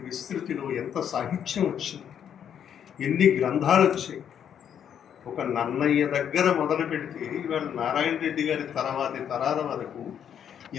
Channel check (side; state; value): right; quieter; 8.8 dB